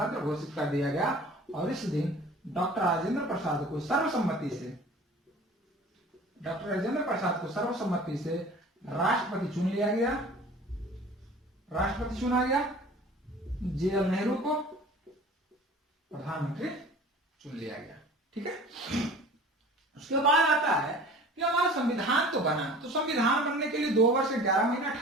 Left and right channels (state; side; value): normal; both; correlation 0.43